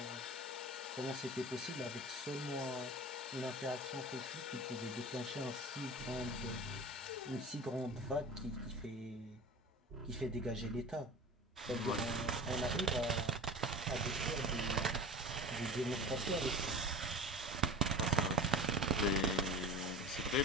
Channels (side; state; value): both; normal; correlation 0.35